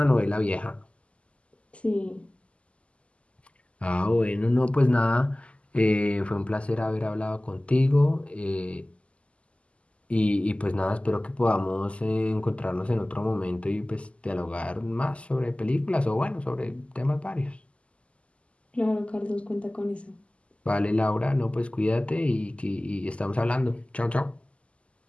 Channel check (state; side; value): late; right; 0.058 ms